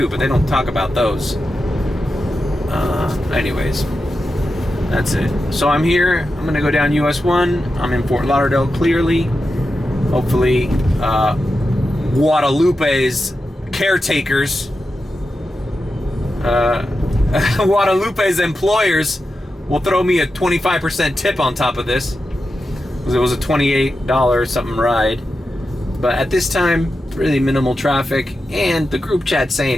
but they don't talk about those. Anyways, that's it. So I'm here. I'm gonna go down US 1. I'm in Fort Lauderdale. Clearly, hopefully, Guadalupe's caretakers. Guadalupe's employers will throw me a 25% tip on top of this, because it was a $28 something ride. But at this time, really minimal traffic, and the group chat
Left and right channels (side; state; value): both; normal; correlation 0.90